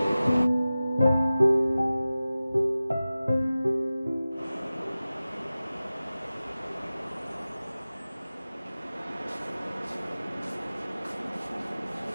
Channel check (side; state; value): both; inverted; correlation -0.96